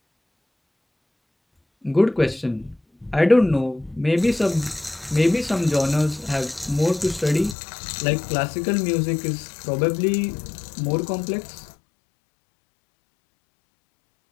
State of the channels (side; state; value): right; drops out; at 7.6 s